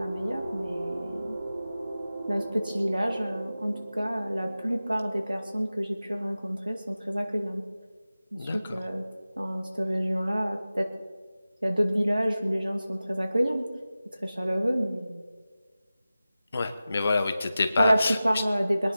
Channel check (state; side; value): inverted; both; correlation -0.95